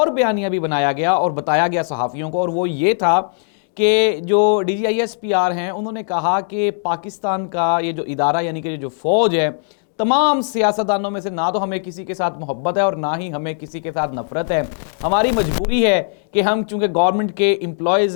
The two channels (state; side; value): silent; right; digital silence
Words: बयानिया भी बनाया गया और बताया गया सहाफ़ियों को, और वो ये था कि जो DGISPR हैं, उन्होंने कहा कि पाकिस्तान का ये जो इदारा यानी कि जो फ़ौज है, तमाम सियासतदानों में से ना तो हमें किसी के साथ मोहब्बत है और ना ही हमें किसी के साथ नफरत है। हमारी मजबूरी है कि हम चूँकि गवर्नमेंट के